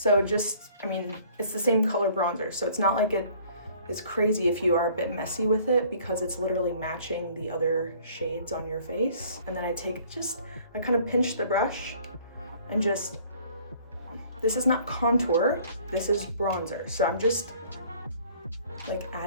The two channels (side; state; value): both; inverted; correlation -0.56